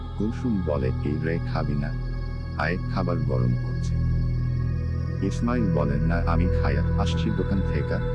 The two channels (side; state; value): both; identical; correlation 1.00